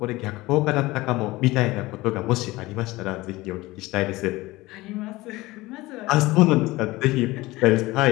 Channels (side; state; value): right; quieter; 19.8 dB